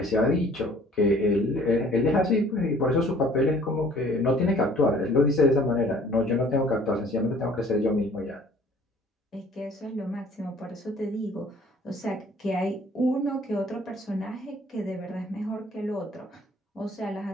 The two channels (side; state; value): both; normal; correlation 0.54